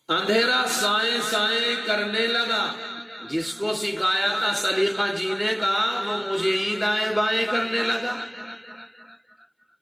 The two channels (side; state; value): both; identical; correlation 1.00